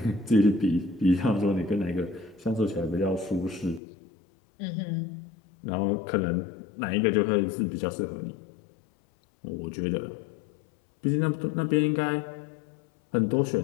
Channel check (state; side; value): drops out; right; at 3.8 s